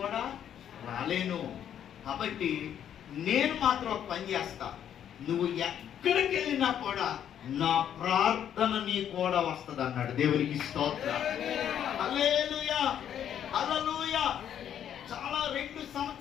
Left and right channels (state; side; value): quieter; right; 9.6 dB